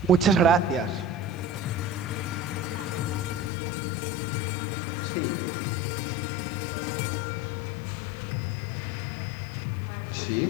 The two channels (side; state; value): right; drops out; at 3.5 s